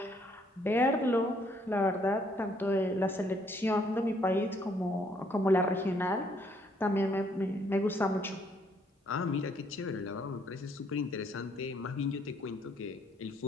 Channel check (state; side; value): normal; both; correlation 0.67